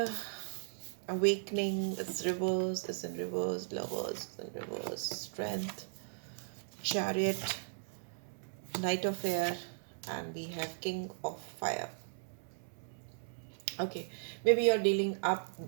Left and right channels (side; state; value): left; silent; digital silence